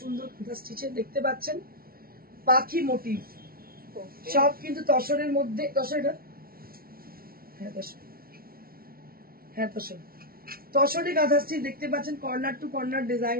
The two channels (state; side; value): late; left; 0.43 ms